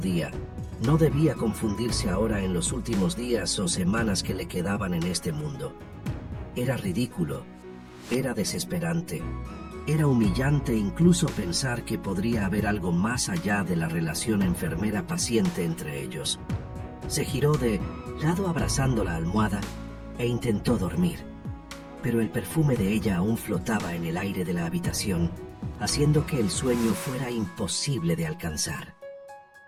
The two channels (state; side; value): identical; both; correlation 1.00